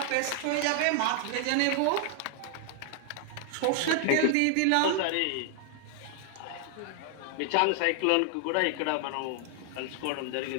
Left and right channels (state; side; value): different; both; correlation 0.00